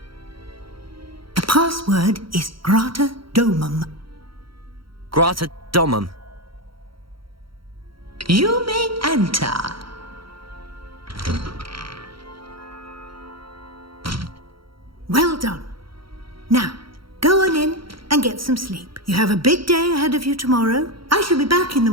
The password is Grata Domum. Grata Domum. You may enter. Well done. Now, go on in and get some sleep. You have a big day ahead of you tomorrow. I shall be back in the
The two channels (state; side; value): late; left; 0.74 ms